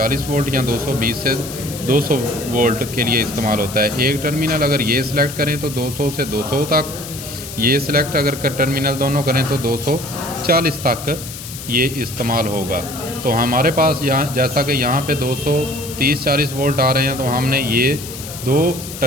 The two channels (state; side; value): noise; left; hiss, 11 dB below the sound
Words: वोल्ट या 220 से 200 वोल्ट के लिए इस्तेमाल होता है। एक टर्मिनल अगर ये सिलेक्ट करें तो 200 से 200 तक, ये सिलेक्ट अगर कर टर्मिनल दोनों करें तो 240 तक ये इस्तेमाल होगा। तो हमारे पास यहाँ जैसा कि यहाँ पे 230-40 वोल्ट आ रहे हैं, तो हमने ये दो